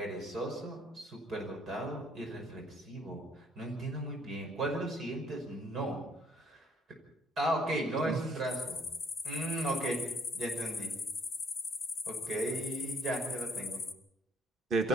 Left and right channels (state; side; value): normal; both; correlation 0.63